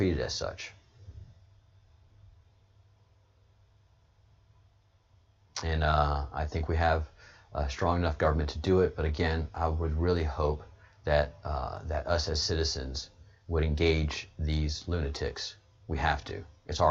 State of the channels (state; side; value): identical; both; correlation 1.00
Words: as such. And I think we have a strong enough government to do it. But again, I would really hope that that us as citizens would engage these lunatics. We have to. It's